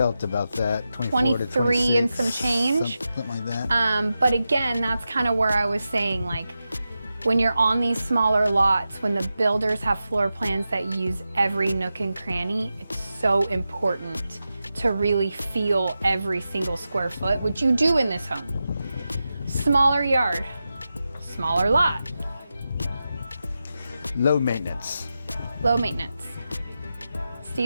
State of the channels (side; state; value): both; inverted; correlation -0.91